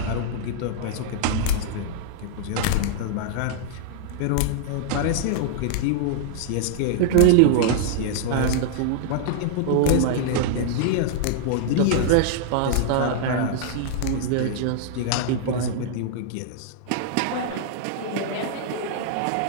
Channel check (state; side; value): different; both; correlation -0.01